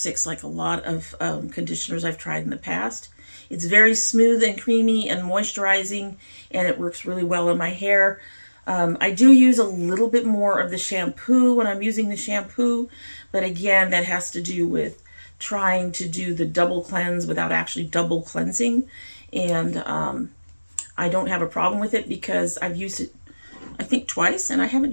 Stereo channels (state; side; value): inverted; both; correlation -1.00